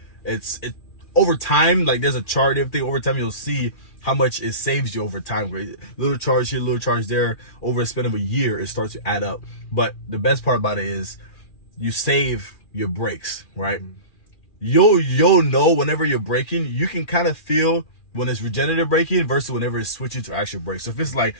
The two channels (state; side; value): late; right; 2.4 ms